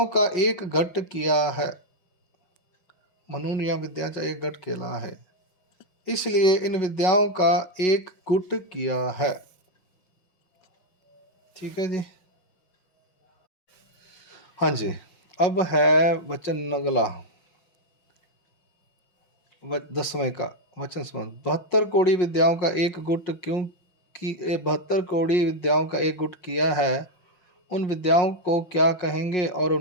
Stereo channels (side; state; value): right; late; 5.8 ms